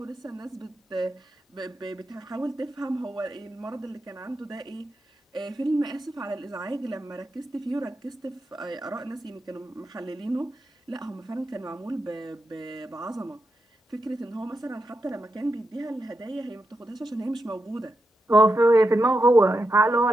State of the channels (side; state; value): both; normal; correlation 0.87